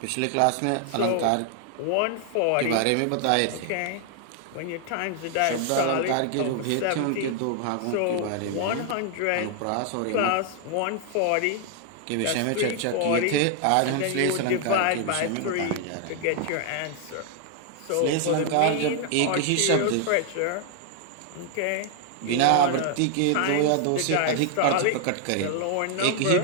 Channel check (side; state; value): both; different; correlation 0.00